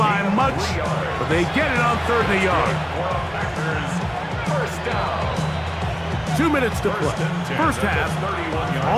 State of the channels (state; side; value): identical; both; correlation 1.00